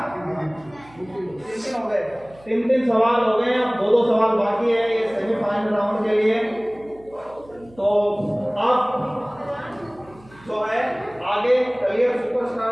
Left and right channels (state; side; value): noise; right; hum, 25 dB below the sound